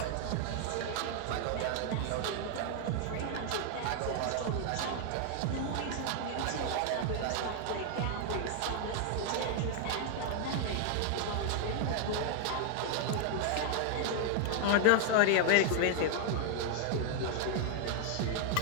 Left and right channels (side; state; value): both; different; correlation 0.00